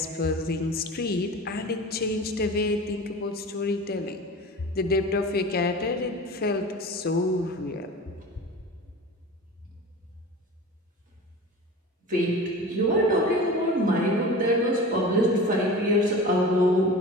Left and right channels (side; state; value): both; normal; correlation 0.35